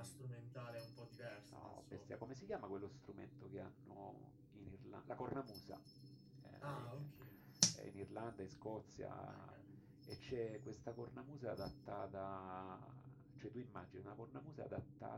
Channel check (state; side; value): identical; both; correlation 1.00